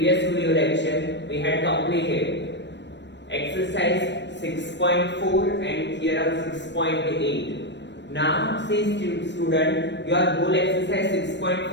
video lecture we had completed exercise 6.4 and theorem 6.8. Now see student, your whole exercise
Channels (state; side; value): late; right; 0.52 ms